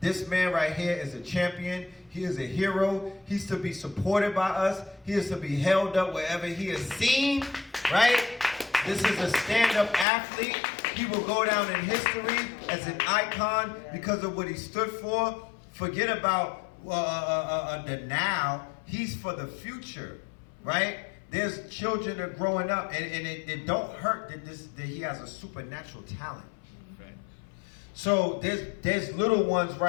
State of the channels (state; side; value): drops out; right; at 10.1 s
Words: man right here is a champion. He is a hero. He's to be supported by us. He is to be held up wherever he is seen, right? This is a stand-up athlete. He will go down in history as an icon because of what he stood for. Forget about the now. He's for the future, right? There's children that are growing up, and it don't hurt that he has a supernatural talent. So there's little ones